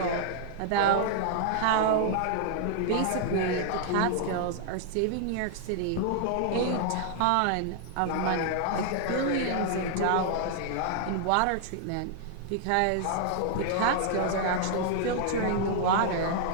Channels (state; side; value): different; both; correlation -0.01